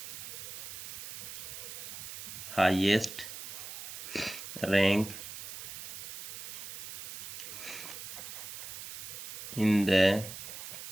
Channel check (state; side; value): noise; right; hiss, 10 dB below the sound